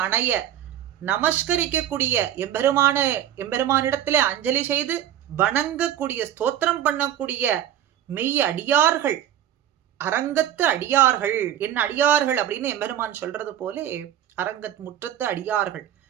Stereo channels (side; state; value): left; quieter; 11.1 dB